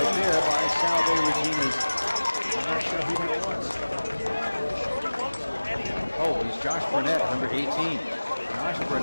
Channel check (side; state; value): both; inverted; correlation -1.00